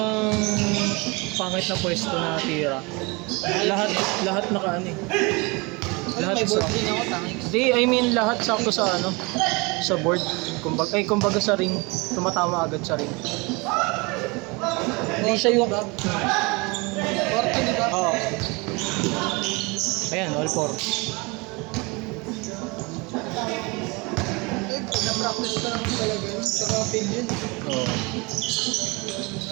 pangit na pwesto na tira. Lahat naka ano eh. Ano, may board din ako, tangik. Hindi, I mean lahat sakto sa ano, sa board. Kumbaga sa ring, tumatama agad sa ring. Hindi siya yung... 40, di ba? Oo. Ayan, all four. Eh, na-practice ko naman talaga yun. Tsaka feel yun. Oo.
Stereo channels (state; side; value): quieter; left; 27.1 dB